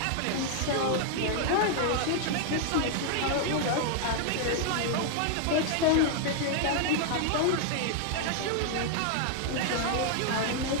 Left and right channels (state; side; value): different; both; correlation 0.00